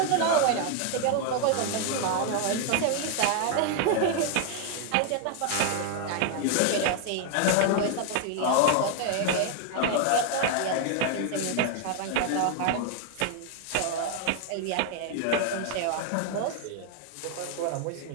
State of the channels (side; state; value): both; different; correlation 0.01